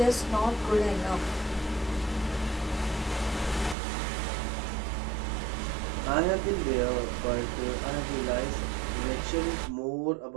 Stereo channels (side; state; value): left; drops out; at 3.8 s